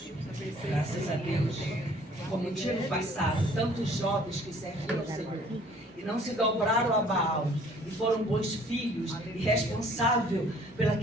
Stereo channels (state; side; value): normal; both; correlation 0.56